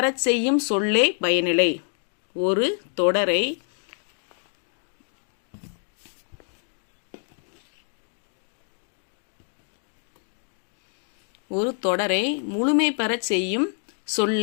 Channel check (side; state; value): right; silent; 61 dB below the other